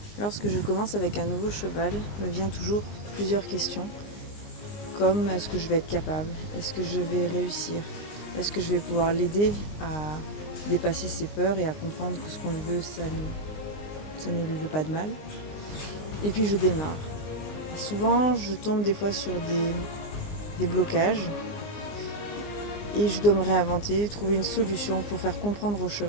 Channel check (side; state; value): right; late; 20 ms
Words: Lorsque je commence avec un nouveau cheval, me vient toujours plusieurs questions, comme est-ce que je vais être capable? Est-ce que je vais réussir? Est-ce que je vais pouvoir l'aider à dépasser ses peurs et à comprendre que ce qu'on veut, ça ne lui veut pas de mal? Et puis je démarre. Et souvent, je tombe des fois sur des blocages et je dois me réinventer, trouver une solution pour faire comprendre au